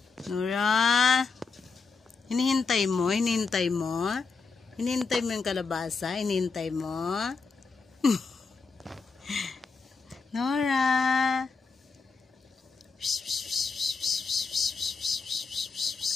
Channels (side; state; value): right; quieter; 4.6 dB